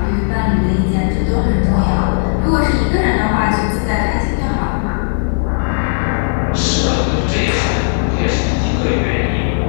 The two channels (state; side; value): silent; right; digital silence